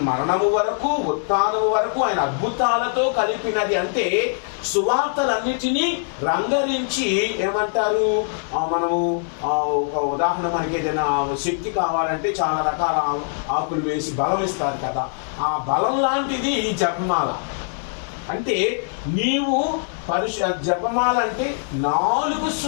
మరణము వరకు, ఉత్థానము వరకు ఆయన అద్భుతాలతో కలిపినది. అంటే సువార్తలన్నిటినీ రంగరించి ఏమంటారు, మనము ఒక ఉదాహరణ, మనకి ఏదైనా శక్తి కావాలంటే చాలా రకాల ఆకులు వేసి బలం ఇస్తారు కదా, ఆ బలం లాంటిది ఈ జపమాల. అంటే నీవు జపమాల అంటే 4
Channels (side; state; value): right; silent; 58 dB below the other